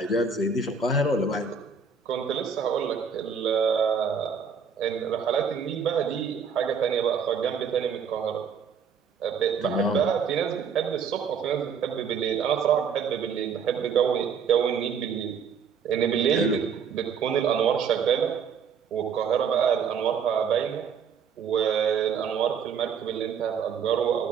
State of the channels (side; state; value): left; quieter; 6.3 dB